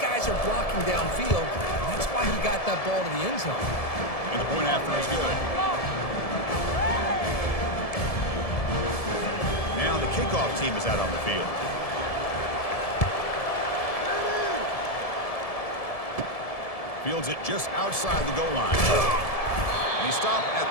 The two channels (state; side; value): late; right; 1.7 ms